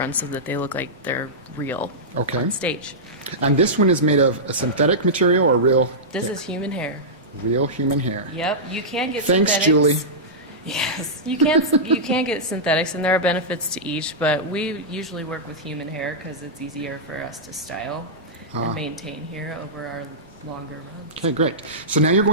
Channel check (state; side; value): normal; both; correlation -0.13